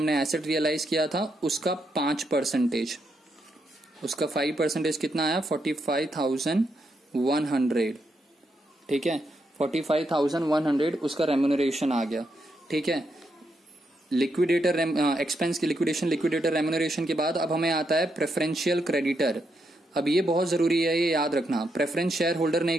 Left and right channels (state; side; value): normal; both; correlation 0.80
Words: एसेट रियलाइज किया था उसका 5%, उसका 5% कितना आया 45,100। ठीक है, 45,100 उसका रेम्यूनरेशन आ गया। ठीक है, लिक्विडेटर एक्सपेंस की लिक्विडेशन, लिक्विडेटर रेम्यूनरेशन के बाद अब हमें आता है प्रेफरेंशियल क्रेडिटर। अब ये बहुत जरूरी है, ये याद रखना। प्रेफरेंस शेयर होल्डर नहीं